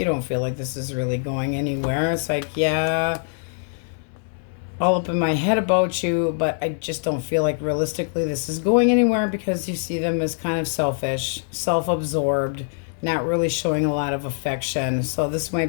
don't feel like this is really going anywhere. It's like, yeah, all up in my head about you, but I just don't feel like realistically this is going anywhere, because you see them as kind of selfish, self-absorbed, not really showing a lot of affection. So this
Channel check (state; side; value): silent; right; 63 dB below the other